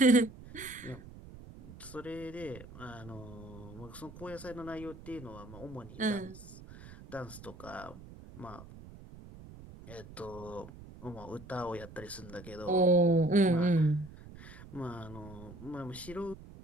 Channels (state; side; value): noise; right; rumble, 16 dB below the sound